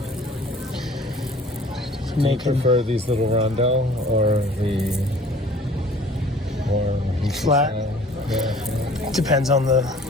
Do you prefer these little rondo or the more hishi Flat? style? Yeah. Depends on the.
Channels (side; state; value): both; normal; correlation 0.50